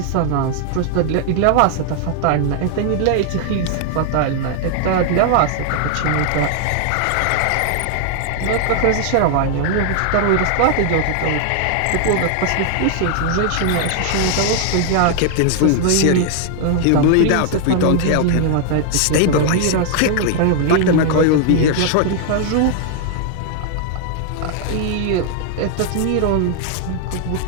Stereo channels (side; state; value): both; different; correlation 0.00